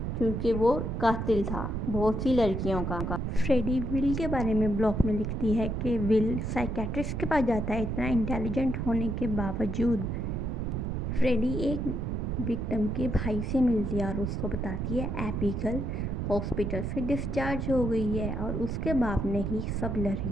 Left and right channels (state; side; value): noise; right; rumble, 2 dB below the sound